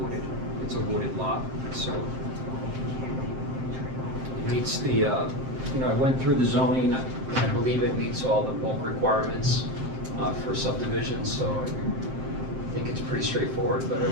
It's a wooded lot, so it meets the, I went through the zoning. I believe it meets all the bulk requirements for subdivision, so I think it's pretty straightforward, but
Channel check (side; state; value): left; late; 7.5 ms